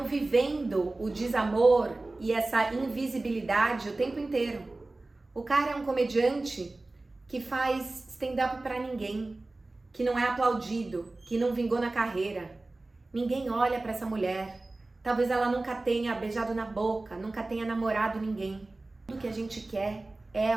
vivendo o desamor e essa invisibilidade o tempo inteiro. O cara é um comediante que faz stand-up pra ninguém, que não é aplaudido, que não vingou na carreira. Ninguém olha pra essa mulher. Talvez ela nunca tenha beijado na boca, nunca tenha namorado ninguém. Tudo que a gente quer é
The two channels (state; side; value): quieter; left; 3.1 dB